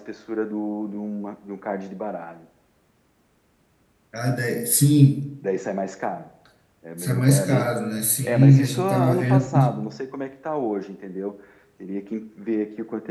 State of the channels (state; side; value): identical; both; correlation 1.00